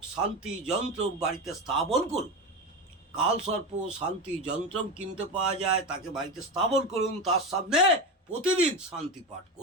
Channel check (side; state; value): both; normal; correlation 0.19